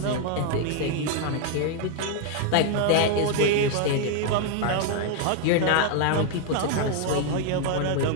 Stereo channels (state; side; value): different; both; correlation 0.00